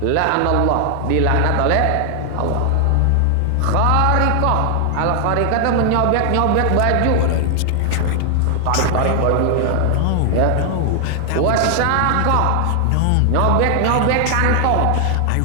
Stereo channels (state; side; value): different; both; correlation 0.00